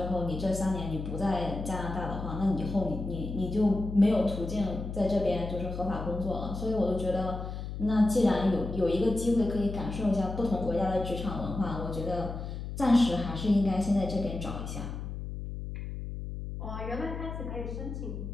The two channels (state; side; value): noise; left; hum, 7 dB below the sound